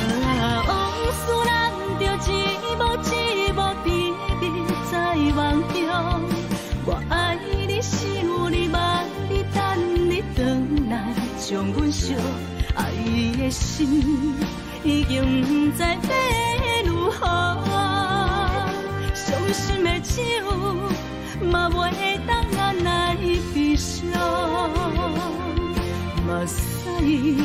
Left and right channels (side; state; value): both; identical; correlation 1.00